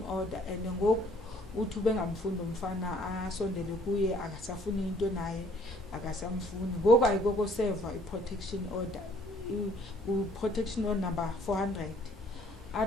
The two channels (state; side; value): normal; both; correlation 0.60